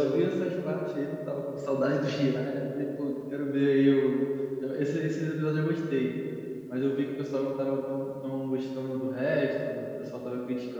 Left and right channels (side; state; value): both; identical; correlation 1.00